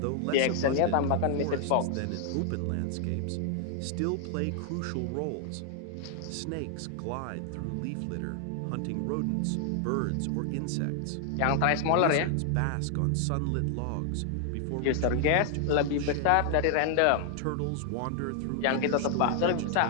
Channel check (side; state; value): both; different; correlation 0.00